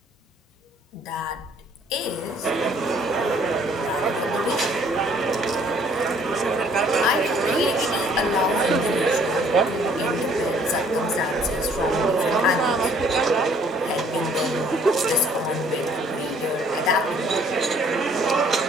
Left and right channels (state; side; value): normal; both; correlation 0.60